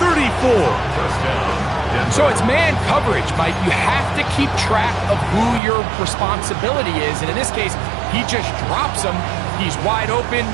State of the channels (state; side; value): drops out; left; at 5.6 s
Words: So it's man coverage, Mike. You have to keep track of who your responsibility is. And in this case, he just drops him. He's wide open,